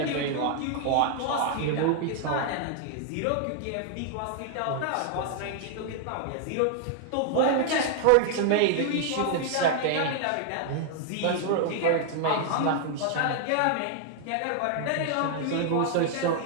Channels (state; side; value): different; both; correlation 0.00